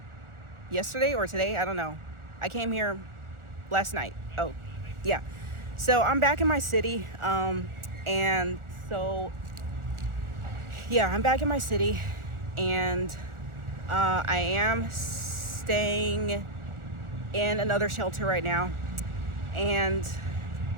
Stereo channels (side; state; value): left; late; 1.4 ms